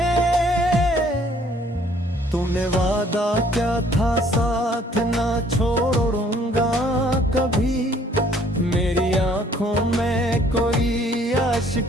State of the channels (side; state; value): both; normal; correlation 0.60